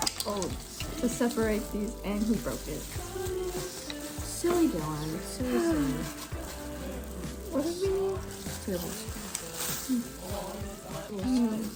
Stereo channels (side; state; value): both; identical; correlation 1.00